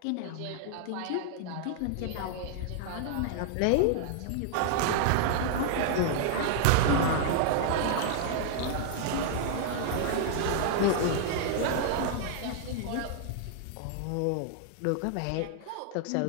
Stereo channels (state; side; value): different; both; correlation -0.01